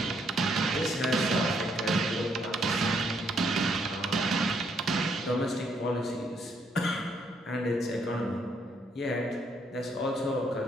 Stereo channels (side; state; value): both; normal; correlation 0.72